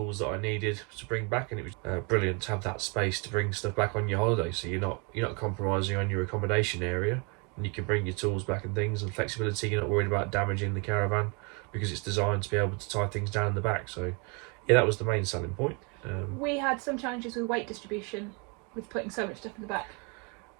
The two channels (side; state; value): left; quieter; 32.8 dB